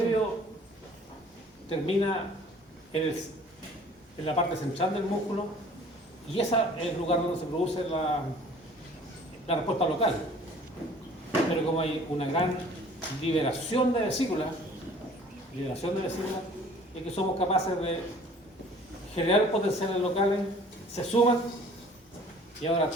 termina en la parte central del músculo y ese es el lugar donde se produce la respuesta local. Pero como hay una gran liberación de vesículas, es que somos capaces de generar potenciales locales, se suman y ahora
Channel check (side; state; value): both; normal; correlation 0.51